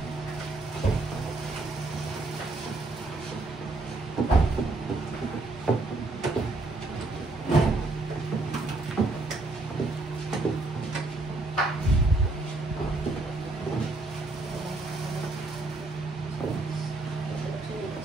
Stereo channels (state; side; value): quieter; left; 3.2 dB